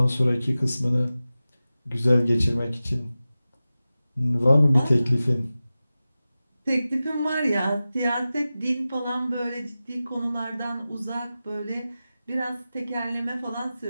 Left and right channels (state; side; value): inverted; both; correlation -0.95